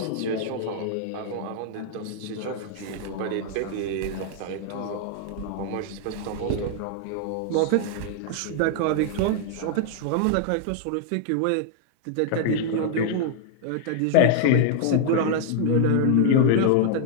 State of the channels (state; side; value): different; both; correlation 0.00